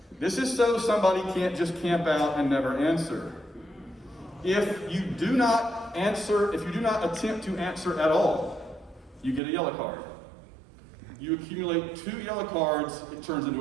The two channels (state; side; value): drops out; left; at 9.4 s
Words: This is so somebody can't just camp out and never answer. If you do not attempt to answer at all, you get a yellow card. You accumulate 2 yellow cards, it turns